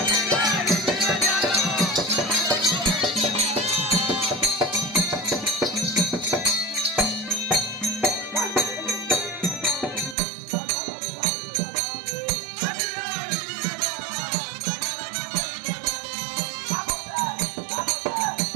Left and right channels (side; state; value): left; drops out; at 10.2 s